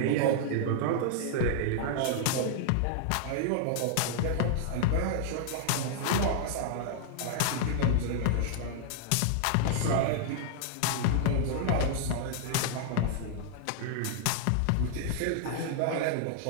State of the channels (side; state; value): both; different; correlation -0.01